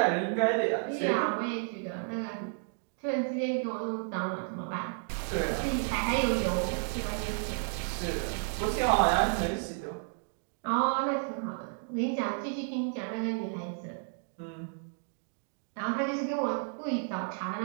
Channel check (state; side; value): silent; left; 56 dB below the other